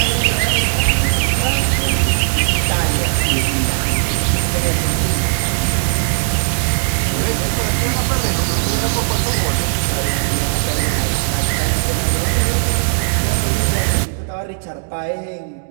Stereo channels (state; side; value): silent; left; digital silence